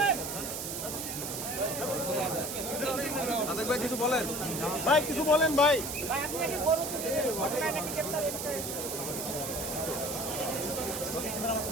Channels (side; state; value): right; noise; hiss, 5 dB below the sound